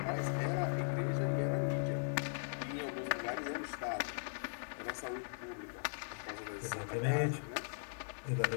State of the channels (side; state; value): right; silent; digital silence